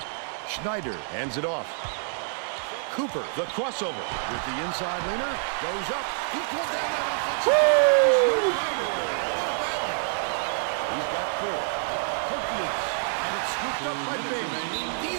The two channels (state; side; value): silent; left; 60 dB below the other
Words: Schneider hands it off. Cooper, the crossover with the inside leaner, goes up. He pulled down that offensive. Woo! What a battle. He's got 4. Hook loose, and it's scooped up by Bing. The